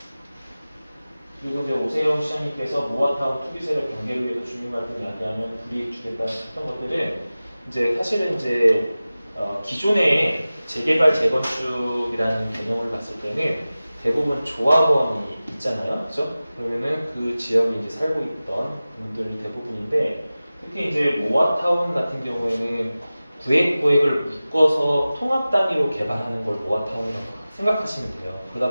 그리고 이제 오세훈 시장님께서 모아타운 투기 세력 경계를 위해서 주민 갈등 야기하면 불이익 주겠다 했던 것들은 이제 사실은 이제 기존의 재개발 재건축이라는 개념을 봤을 때는 대부분 조합원이 있잖아요, 그렇죠? 그러면은 그 지역에 이제 살고 있던 분들이 대부분인데 특히 이제 모아타운 같은 경우에는 구획을 묶어서 통합 단위로 개발하는 걸 모아타운이라고 생각하시면 돼요.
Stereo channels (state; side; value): inverted; both; correlation -0.97